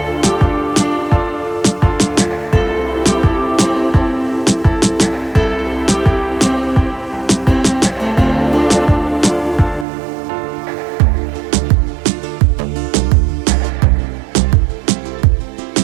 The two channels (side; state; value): left; drops out; at 9.9 s